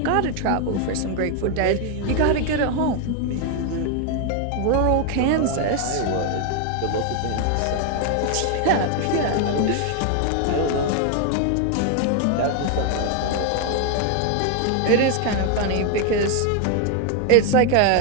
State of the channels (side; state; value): both; different; correlation 0.01